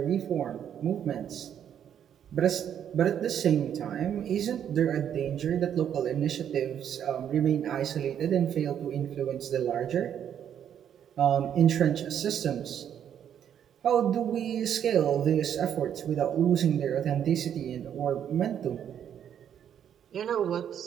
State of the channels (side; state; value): left; quieter; 9.2 dB